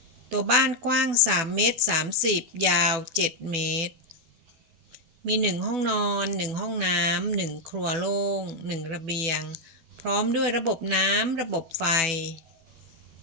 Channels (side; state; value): left; late; 12 ms